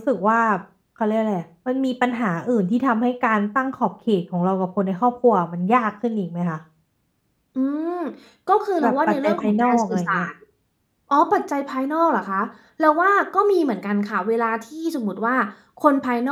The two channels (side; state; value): both; identical; correlation 1.00